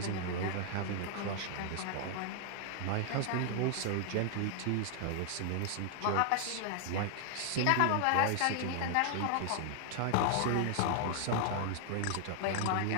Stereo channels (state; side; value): different; both; correlation 0.00